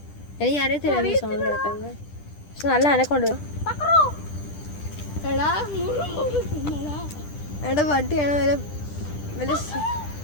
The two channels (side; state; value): right; late; 10 ms